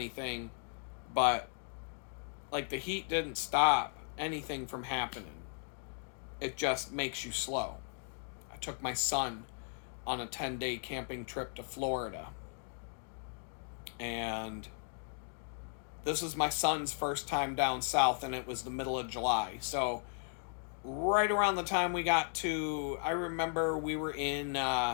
but Like, the heat didn't stop anything from happening. It just makes you slow. I took my son on a 10-day camping trip to Florida. And this was my son's first time down south, and it was the middle of July. So right around the time we got to, I remember we were in,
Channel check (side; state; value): right; silent; 53 dB below the other